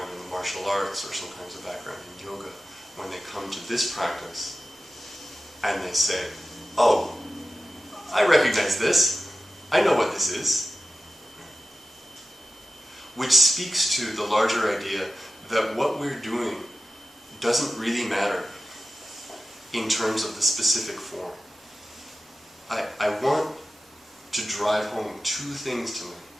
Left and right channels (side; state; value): both; normal; correlation 0.94